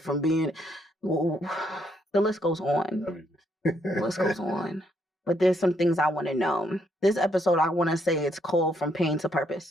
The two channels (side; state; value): both; normal; correlation 0.73